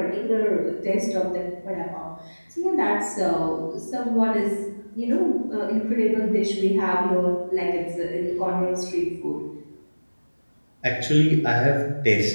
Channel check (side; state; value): both; inverted; correlation -1.00